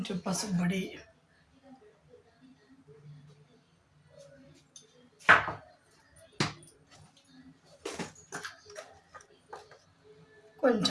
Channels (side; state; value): both; identical; correlation 1.00